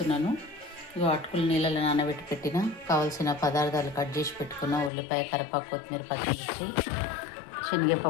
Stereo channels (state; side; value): drops out; right; at 4.9 s